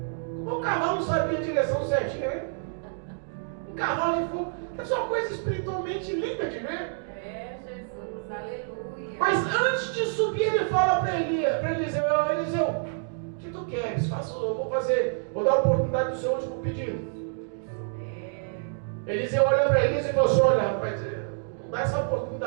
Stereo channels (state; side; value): silent; left; digital silence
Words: Como o cavalo não sabia a direção certinha, né? Um cavalo de fogo. Essa é uma coisa espiritualmente linda de ver. É, Jesus. Aleluia. Mas antes de subir, ele fala para Eliseu: Eliseu, o que tu queres? Vou dar a oportunidade do seu último pedido. Eliseu olha para Elias e fala assim: olha, rapaz, não dá essa